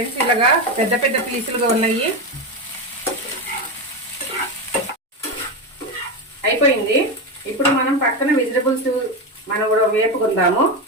ఇలాగా పెద్ద పీసులుగా ఉన్నాయి. అయిపోయింది. ఇప్పుడు మనం పక్కన వెజిటబుల్స్ మనం కూడా వేపుకుందాము.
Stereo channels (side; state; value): both; normal; correlation 0.14